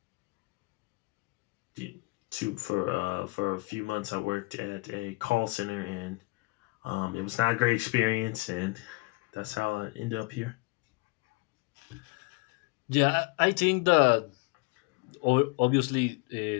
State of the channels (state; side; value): quieter; right; 25.3 dB